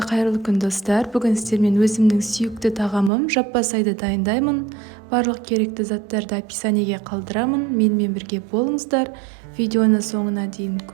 қайырлы күн достар. Бүгін сіздермен өзімнің сүйікті тағамым жаппасайды дайындаймын. Барлық керекті заттарды описаниеге қалдырамын. Менімен бірге болыңыздар. Видеоны соңына дейін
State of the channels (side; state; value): left; drops out; at 3.1 s